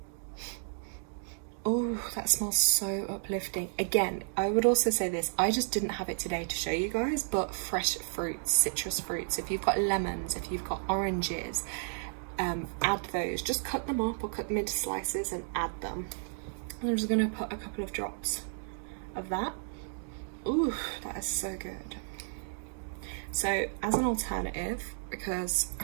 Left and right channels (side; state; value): left; silent; digital silence